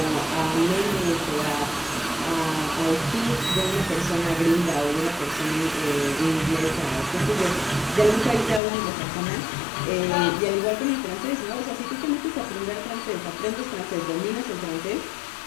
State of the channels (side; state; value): right; drops out; at 8.6 s